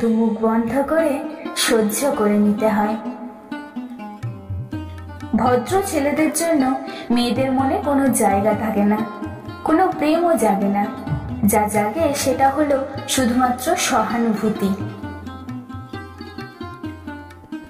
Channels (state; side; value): identical; both; correlation 1.00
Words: মুখ বন্ধ করে সহ্য করে নিতে হয়। ভদ্র ছেলেদের জন্য মেয়েদের মনে কোনো জায়গা থাকে না, কোনো প্রেমও জাগে না। যা জাগে সেটা হলো শুধুমাত্র সহানুভূতি।